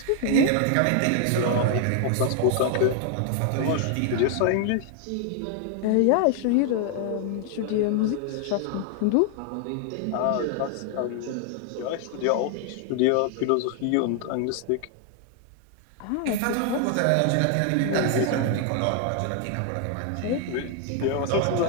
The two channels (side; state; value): both; different; correlation 0.00